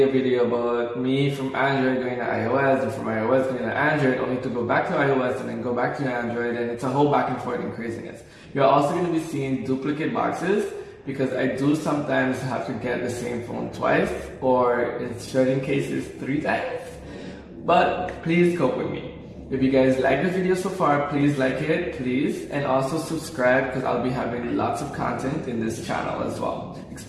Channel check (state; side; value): identical; both; correlation 1.00